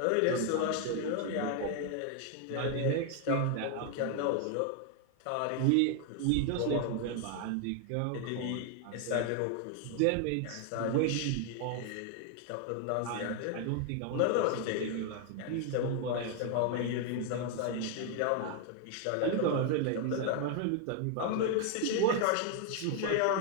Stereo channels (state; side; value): different; both; correlation 0.00